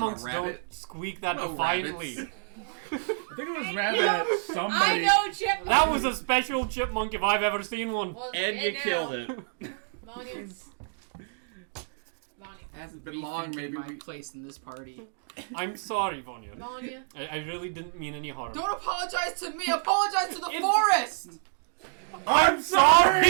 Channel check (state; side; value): silent; left; digital silence